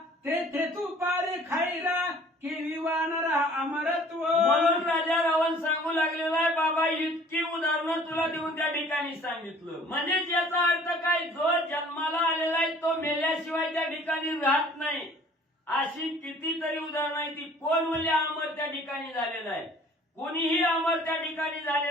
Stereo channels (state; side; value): normal; both; correlation 0.52